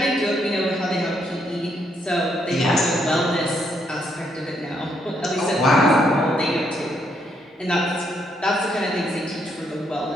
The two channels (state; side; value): normal; both; correlation 0.74